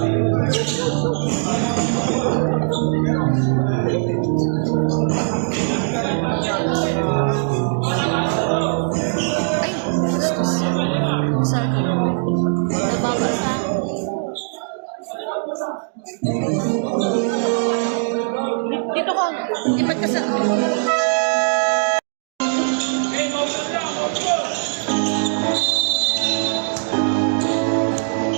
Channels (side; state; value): left; silent; digital silence